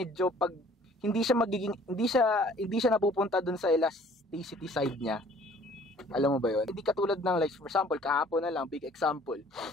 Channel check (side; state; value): both; normal; correlation 0.55